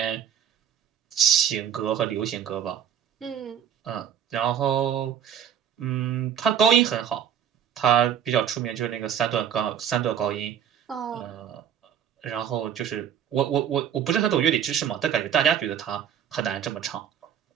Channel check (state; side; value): quieter; left; 9.0 dB